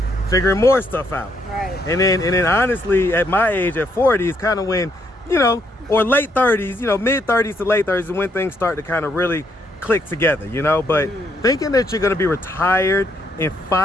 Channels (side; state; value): both; normal; correlation 0.73